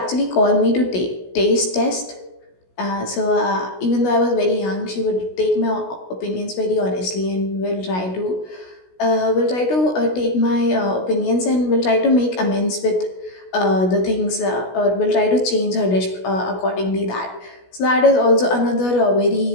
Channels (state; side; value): late; right; 16 ms